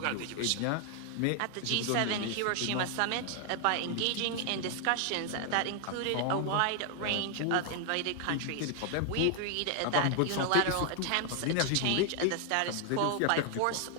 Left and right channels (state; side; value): different; both; correlation 0.00